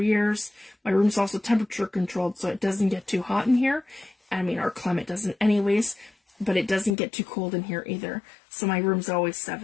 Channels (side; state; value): right; drops out; at 7.0 s